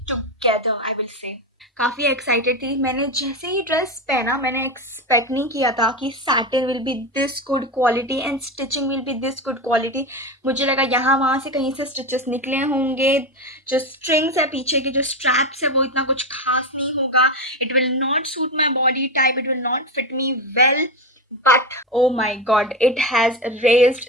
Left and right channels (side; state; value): both; normal; correlation 0.16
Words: together, I will say. काफ़ी एक्साइटेड थी. मैंने जैसे ही ड्रेस पहना, मैंने एक्सपेक्ट नहीं किया था कि satin will be this good quality and stitching will be this good quality. मुझे लगा यहाँ वहाँ से कहीं से स्टिचेस निकले होंगे. जो स्ट्रिंग्स है पीछे की, जो स्ट्रैप्स है, वो इतना कुछ खास नहीं होगा. It will not suit my body type, it will not fit me well. But oh my god, it has